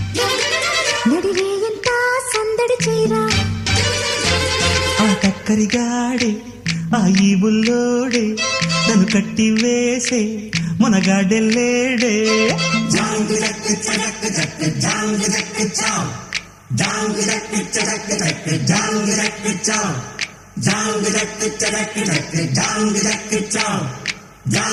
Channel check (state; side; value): identical; both; correlation 1.00